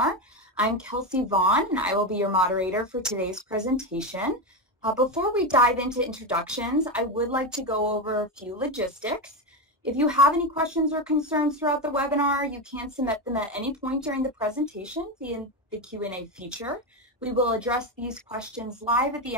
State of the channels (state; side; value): normal; both; correlation 0.13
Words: I'm Kelsey Vaughn, and I will be your moderator for today's presentation. Before we dive into introductions, I would like to go over a few logistics. If you have any questions or concerns throughout the webinar, you can submit them at any point during the presentation via the Q&A feature. We will address these questions live at the